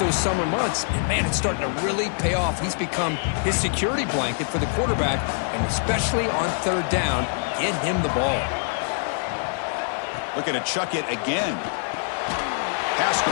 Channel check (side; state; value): right; silent; digital silence